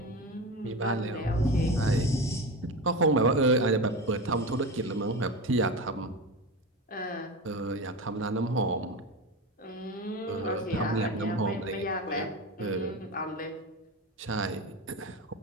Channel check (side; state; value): both; normal; correlation 0.24